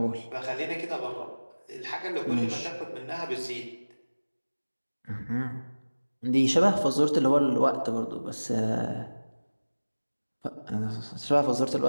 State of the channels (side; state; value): both; inverted; correlation -1.00